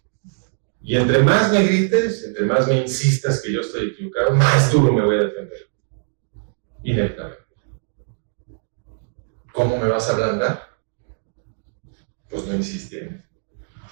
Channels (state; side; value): silent; left; digital silence